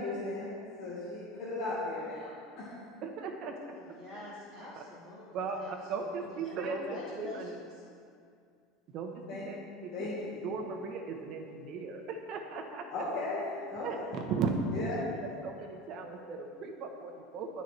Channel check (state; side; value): normal; both; correlation 0.32